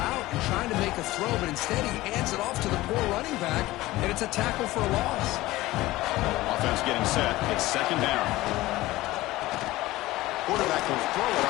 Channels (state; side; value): quieter; right; 18.0 dB